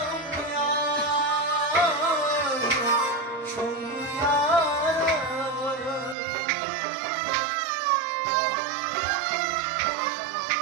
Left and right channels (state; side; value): drops out; left; at 6.2 s